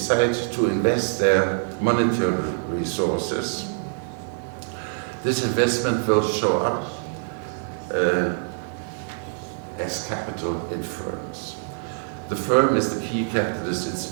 to invest their monetary resources, this investment will show up as capital in firms. The firm is the key capitalist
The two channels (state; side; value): silent; left; 62 dB below the other